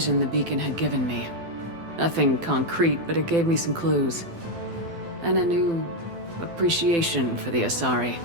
the beacon had given me. Nothing concrete, but it gave me some clues. And a new appreciation for the Asari.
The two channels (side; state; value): left; late; 12 ms